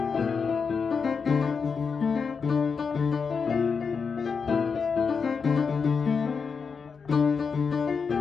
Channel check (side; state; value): right; quieter; 5.6 dB